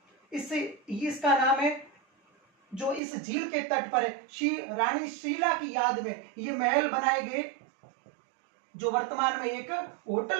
इसका नाम है, जो इस झील के तट पर है, रानी शीला की याद में ये महल बनाए गए, जो वर्तमान में एक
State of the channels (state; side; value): drops out; left; at 3.0 s